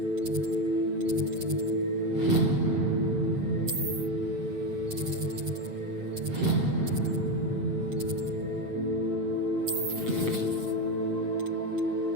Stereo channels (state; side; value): late; left; 8.0 ms